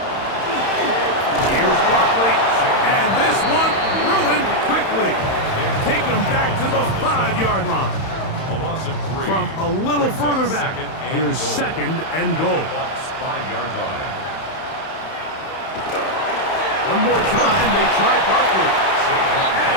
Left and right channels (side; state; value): right; late; 31 ms